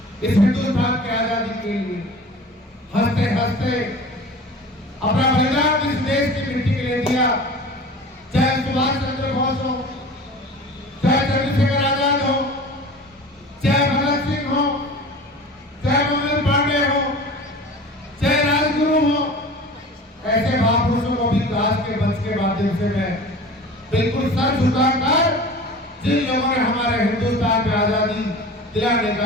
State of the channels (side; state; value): both; normal; correlation 0.38